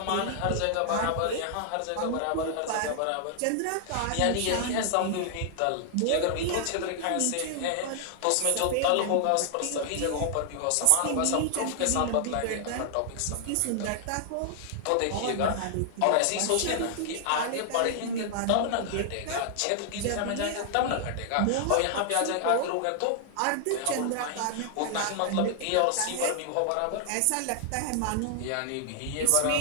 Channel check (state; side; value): different; both; correlation 0.00